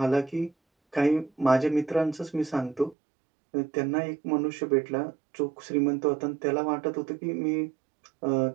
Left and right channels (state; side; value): drops out; left; at 3.0 s